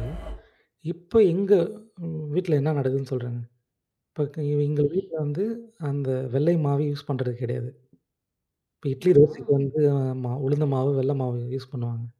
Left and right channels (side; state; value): both; identical; correlation 1.00